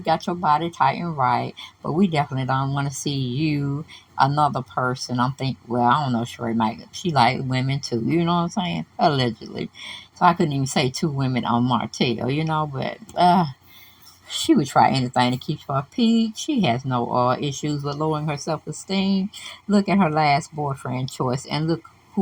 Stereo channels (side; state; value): both; identical; correlation 1.00